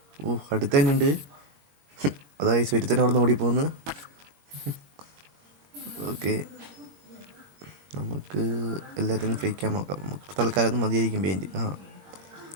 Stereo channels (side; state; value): left; late; 22 ms